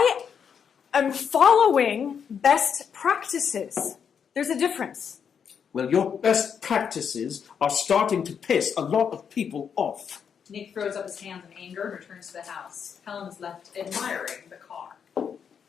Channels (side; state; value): right; quieter; 7.2 dB